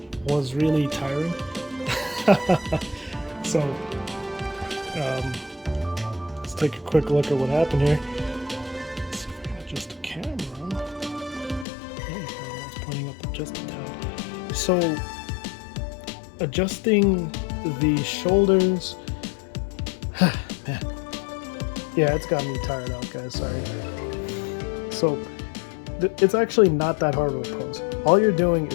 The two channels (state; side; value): drops out; right; at 11.7 s